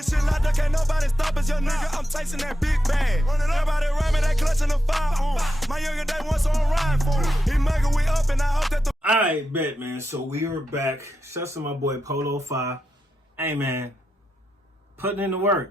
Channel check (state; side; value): normal; both; correlation 0.87